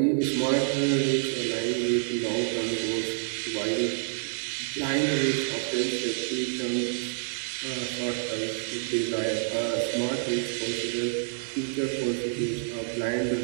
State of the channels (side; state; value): left; silent; 59 dB below the other